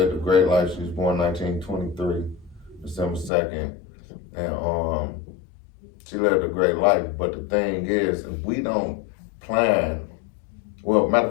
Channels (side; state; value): right; drops out; at 3.3 s